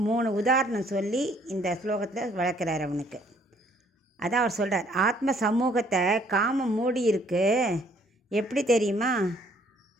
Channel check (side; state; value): both; normal; correlation 0.62